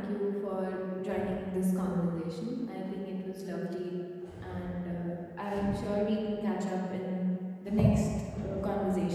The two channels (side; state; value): both; identical; correlation 1.00